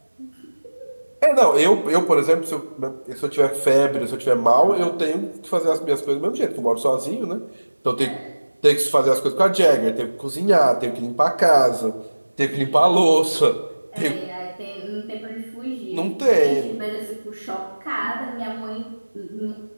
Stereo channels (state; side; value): inverted; both; correlation -1.00